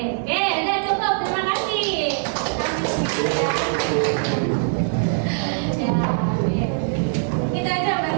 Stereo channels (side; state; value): left; silent; 64 dB below the other